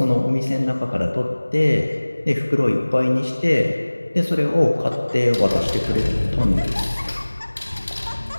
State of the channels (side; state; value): both; inverted; correlation -1.00